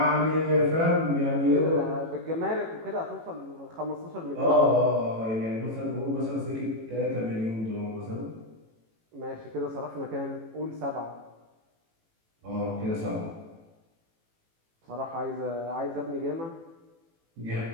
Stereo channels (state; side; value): late; left; 18 ms